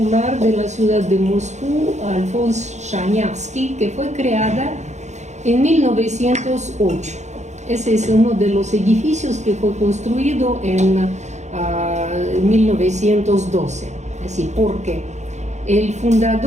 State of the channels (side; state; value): left; late; 0.33 ms